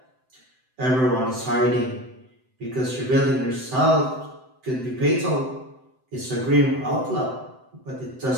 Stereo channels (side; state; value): left; late; 7.8 ms